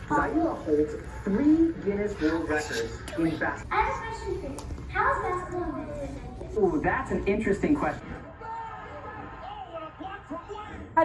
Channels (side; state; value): both; identical; correlation 1.00